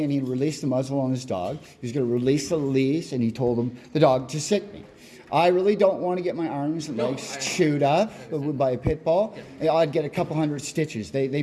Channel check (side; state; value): both; identical; correlation 1.00